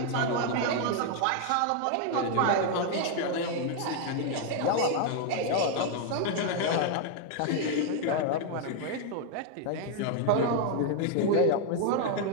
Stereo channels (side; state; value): both; different; correlation 0.00